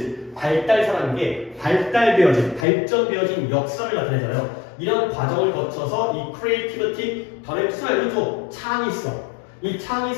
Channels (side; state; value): right; drops out; at 2.7 s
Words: 발달사라는 게 발전되어진 역사를 나타내잖아요. 이런 과정을 거쳐서 이 creativity, 단어의 뜻을 알려줘. 창의성. 이